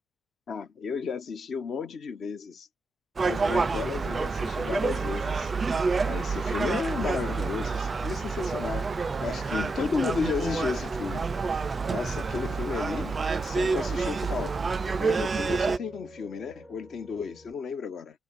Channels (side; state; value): both; normal; correlation 0.84